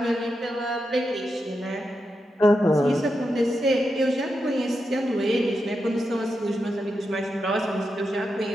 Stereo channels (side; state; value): both; normal; correlation 0.87